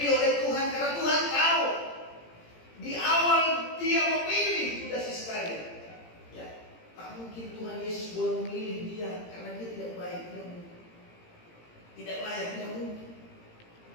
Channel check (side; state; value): right; late; 17 ms